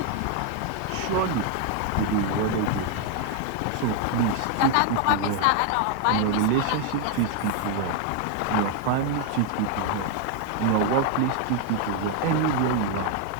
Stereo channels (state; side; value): different; both; correlation 0.01